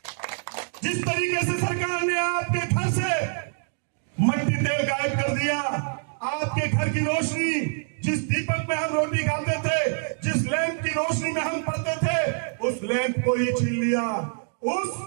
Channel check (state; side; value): silent; left; 61 dB below the other